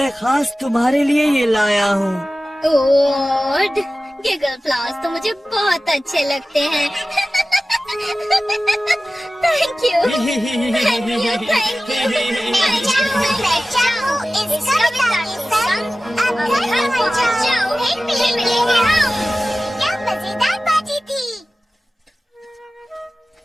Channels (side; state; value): both; normal; correlation 0.96